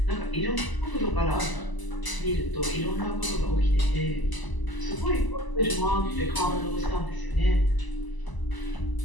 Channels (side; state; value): right; late; 1.0 ms